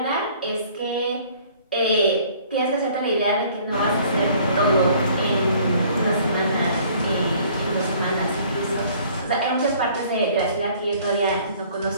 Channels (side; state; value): both; inverted; correlation -0.56